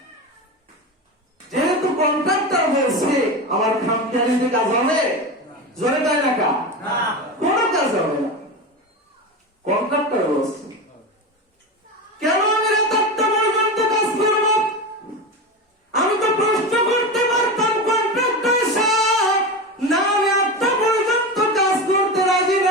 যেহেতু কন্ট্রাক্টর বলছে আমার খামখেয়ালিতে কাজ হবে, জোরে তাই না কা? কোনো কাজ হবে না, কন্ট্রাক্টর বলছে। কেন আমি রাত 8টা পর্যন্ত কাজ করব? আমি তো প্রশ্ন করতে পারতাম কন্ট্রাক্টর সাহেব, না আমি 8টা পর্যন্ত কাজ করতে রাজি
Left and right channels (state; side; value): normal; both; correlation 0.22